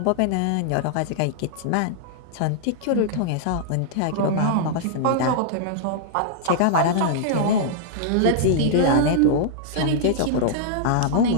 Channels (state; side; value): different; both; correlation -0.01